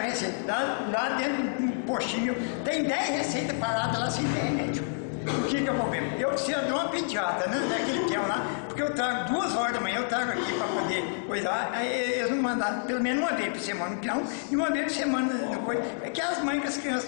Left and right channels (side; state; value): right; silent; 59 dB below the other